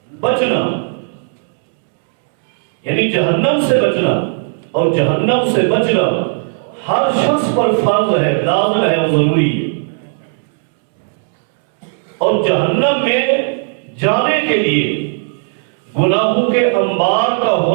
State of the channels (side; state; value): left; silent; 69 dB below the other